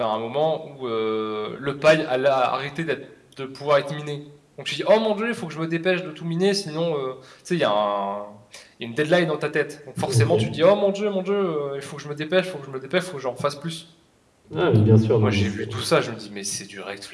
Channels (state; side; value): identical; both; correlation 1.00